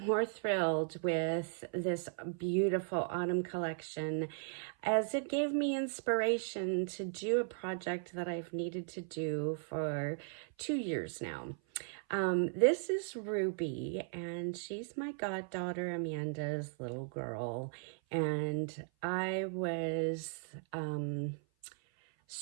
thrilled with this beautiful autumn collection, as it gave me inspiration to do a project that I've needed to do for 2 years now. This is Ruby, and she's my goddaughter Amanda's little girl. And I was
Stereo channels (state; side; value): silent; left; 53 dB below the other